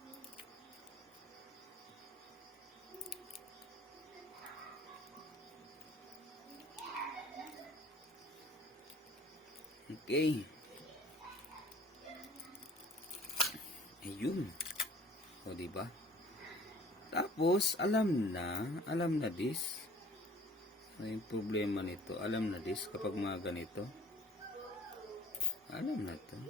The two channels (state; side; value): normal; both; correlation 0.50